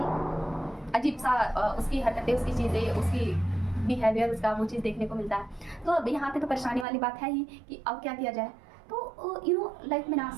अजीब सा उसकी हरकतें, उसकी चीज़ें, उसकी बिहेवियर, उसका वो चीज़ देखने को मिलता है। तो अब यहाँ पे तो परेशानी वाली बात है ही कि अब क्या किया जाए। तो लाइफ में ना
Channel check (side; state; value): left; drops out; at 6.9 s